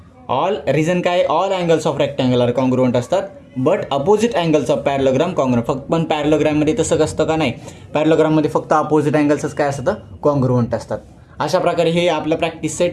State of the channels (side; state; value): both; identical; correlation 1.00